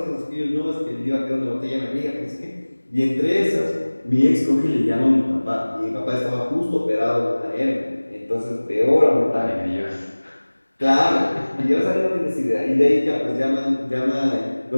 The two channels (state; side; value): inverted; both; correlation -1.00